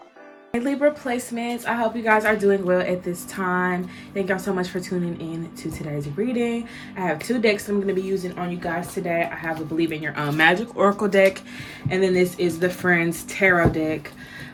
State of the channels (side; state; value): both; identical; correlation 1.00